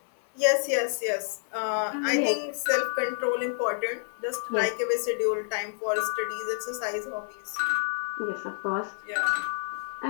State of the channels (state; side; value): silent; right; 59 dB below the other